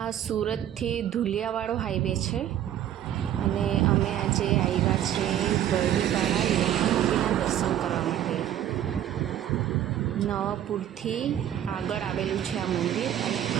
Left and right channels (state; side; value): quieter; left; 11.2 dB